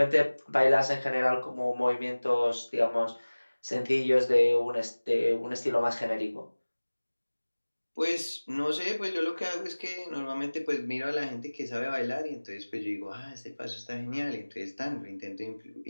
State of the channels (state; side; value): inverted; both; correlation -1.00